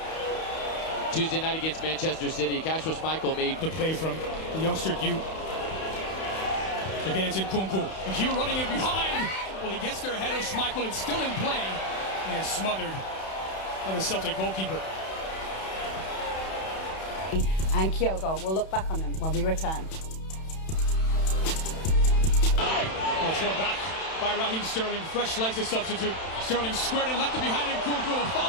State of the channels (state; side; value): late; right; 31 ms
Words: Tuesday night against Manchester City, Kasper Schmeichel made the play from the youngster Hugh. Again, it's Nkunku. And Hugh running in behind. Well, he gets there ahead of Schmeichel. It's still in play and smothered by the Celtic goalkeeper. And Kyogo will look back on them when we return. It's one back by Raheem Sterling. Fresh legs to substitute. Sterling squared and left it behind Nkunku with a